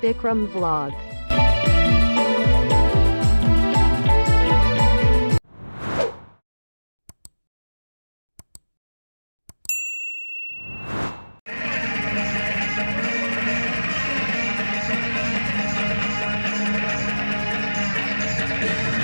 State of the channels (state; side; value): inverted; both; correlation -1.00